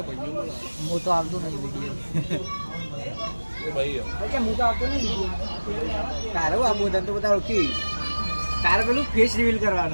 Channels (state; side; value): inverted; both; correlation -1.00